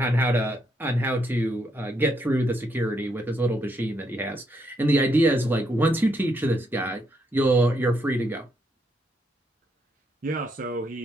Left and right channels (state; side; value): normal; both; correlation 0.77